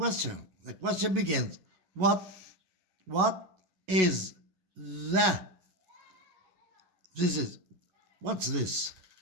The question begins, what is what's this?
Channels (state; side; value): late; left; 11 ms